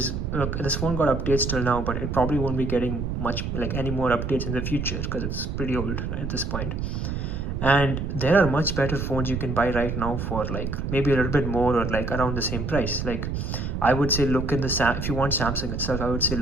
look, this phone got updates till now, but it probably won't be getting much like any more updates in the future because it's pretty old at this point. And there are much better phones you can buy right now for like maybe a little bit more or like around the same price. Like I would say look in if you want Samsung itself, I would say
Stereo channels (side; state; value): right; noise; rumble, 3 dB below the sound